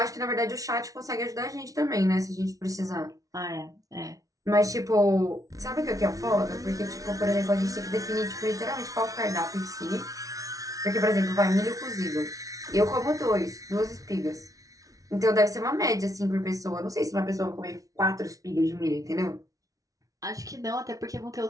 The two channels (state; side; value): late; left; 0.17 ms